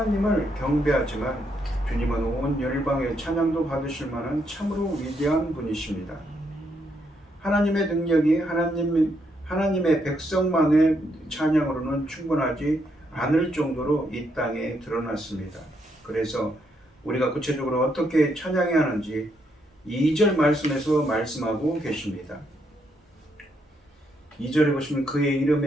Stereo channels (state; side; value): normal; both; correlation 0.76